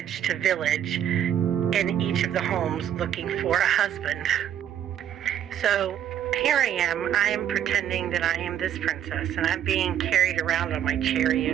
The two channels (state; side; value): quieter; left; 10.1 dB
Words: to village, in each of the homes looking for a husband. So here I am pretending that I am this princess, and I'm being carried around on my